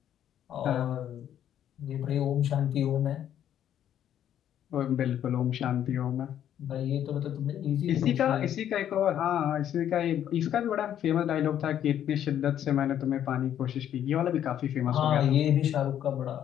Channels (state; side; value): quieter; right; 10.4 dB